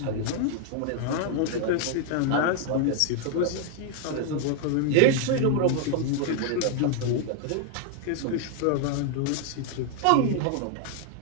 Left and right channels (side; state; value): both; different; correlation 0.00